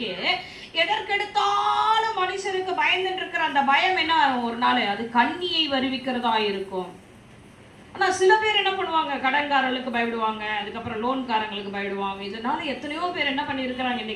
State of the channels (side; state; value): both; identical; correlation 1.00